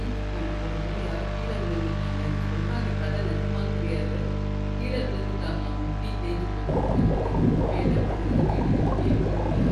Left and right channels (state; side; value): identical; both; correlation 1.00